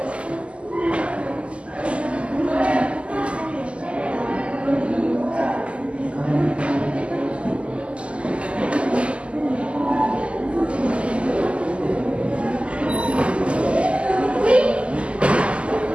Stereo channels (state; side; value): late; left; 0.056 ms